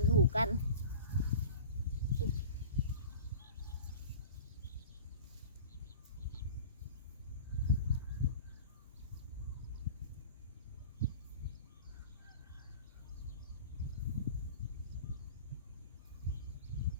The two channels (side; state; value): both; inverted; correlation -0.38